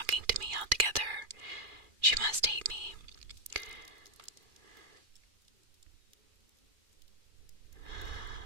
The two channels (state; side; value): late; left; 2.4 ms